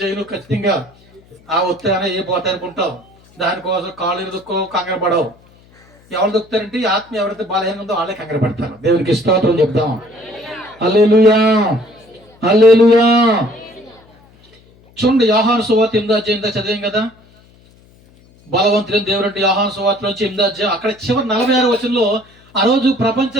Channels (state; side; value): noise; left; hum, 29 dB below the sound